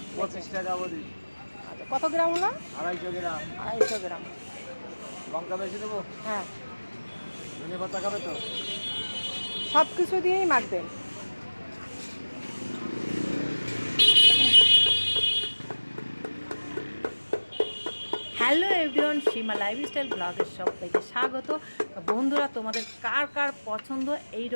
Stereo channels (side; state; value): both; inverted; correlation -1.00